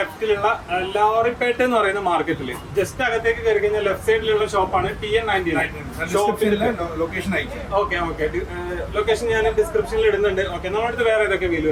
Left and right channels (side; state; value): both; identical; correlation 1.00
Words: ലോറിപ്പേട്ട എന്ന് പറയുന്ന മാർക്കറ്റിൽ ജസ്റ്റ് അകത്തേക്ക് കയറി കഴിഞ്ഞാൽ ലെഫ്റ്റ് സൈഡിലുള്ള ഷോപ്പാണ് TN99. ലൊക്കേഷൻ അയക്കാം. ഓക്കെ ഓക്കെ, ലൊക്കേഷൻ ഞാൻ ഡിസ്ക്രിപ്ഷനിൽ ഇടുന്നുണ്ട്. ഓക്കെ, നമ്മുടെ അടുത്ത് വേറെ ഏതൊക്കെ വീല്